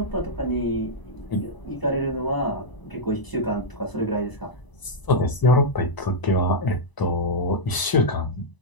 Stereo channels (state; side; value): late; right; 1.0 ms